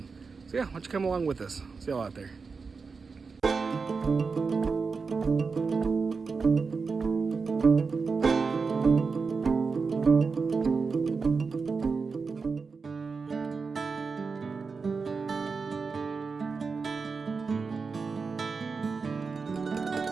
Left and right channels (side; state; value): left; quieter; 4.8 dB